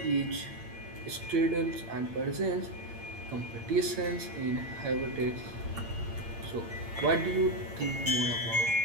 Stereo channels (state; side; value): late; left; 8.8 ms